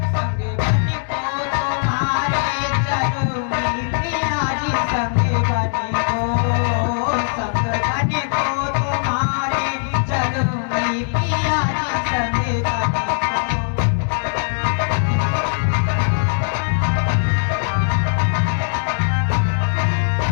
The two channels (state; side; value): silent; right; digital silence